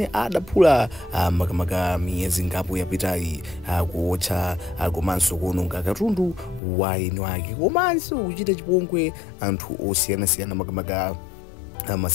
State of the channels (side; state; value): right; drops out; at 6.6 s